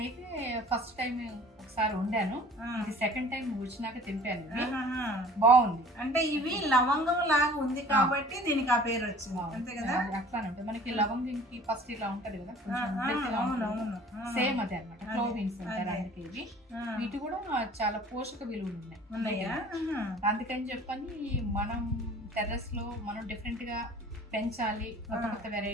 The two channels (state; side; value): normal; both; correlation 0.48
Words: ఫస్ట్ టైం ఒకసారి వండాను, ఇది సెకండ్ టైం వచ్చినాక తింపాను. బాగుంది. అంటే ఇవి లవంగం లాగా ఉంది కాబట్టి దీనికి ఆ పేరు వచ్చింది, అంతే కదా? అట్లానే ఉంటుంది. మనకి లవంగంకి ఫస్ట్ ఇలా ఉంటది కదా, సేమ్ అదే అనమాట. క్లోవ్ బీన్స్ అంటారు అందుకే ఇవి. వీటి కూడా చాలా పోషక విలువలు ఉన్నాయి. అందుకని చెప్పని మనం టెర్రస్ లో మనం డిఫరెంట్ గా పెంచాలి, కొత్త కొత్త